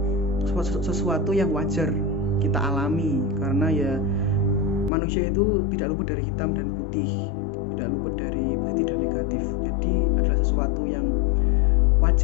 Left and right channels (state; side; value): drops out; right; at 4.9 s